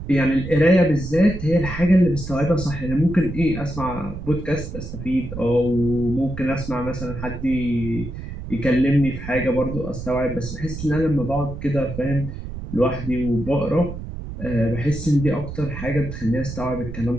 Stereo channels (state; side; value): noise; right; rumble, 9 dB below the sound